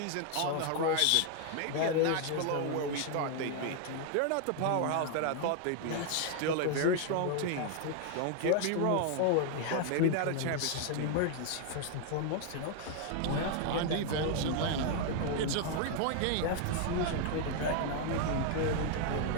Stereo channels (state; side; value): different; both; correlation 0.00